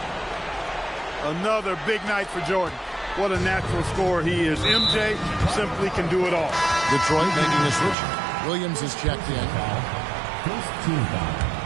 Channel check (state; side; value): drops out; left; at 8.0 s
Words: Another big night for Jordan. What a natural scorer he is. MJ simply can do it all. Detroit making a switch. Williams is checked in. First team foul.